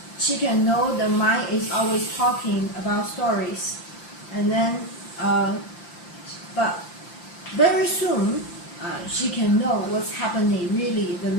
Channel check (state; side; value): late; right; 5.8 ms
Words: know the mind is always talking about stories, and then but very soon she can know what's happening really, the